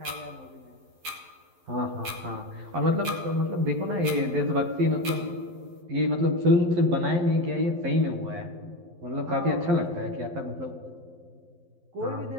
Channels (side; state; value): left; late; 12 ms